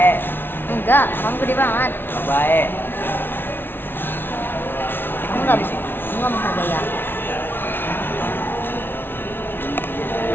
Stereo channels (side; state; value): right; late; 0.10 ms